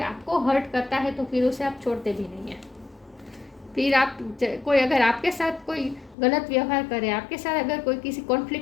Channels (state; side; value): drops out; right; at 6.2 s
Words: आपको हर्ट करता है तो फिर उसे आप छोड़ते भी नहीं हैं। फिर कोई अगर आपके साथ कोई गलत व्यवहार करे, आपके साथ अगर कोई किसी